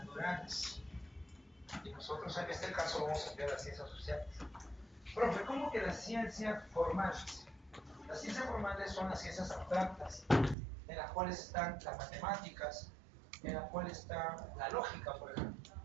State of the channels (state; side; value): drops out; left; at 10.6 s